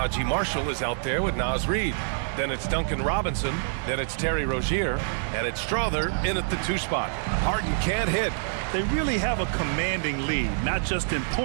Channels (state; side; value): silent; left; digital silence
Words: Marshall is out there with Naz Reid. Then it's Duncan Robinson. Then it's Terry Rozier. And it's Strother in at the 2 spot. Harden can't hit. They really have a commanding lead, not just in